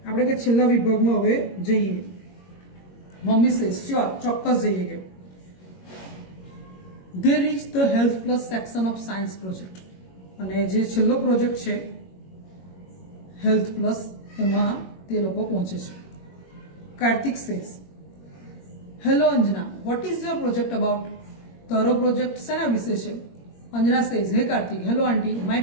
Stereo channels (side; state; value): right; late; 21 ms